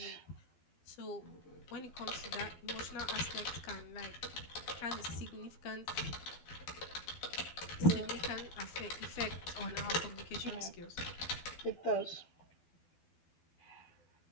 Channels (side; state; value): right; late; 12 ms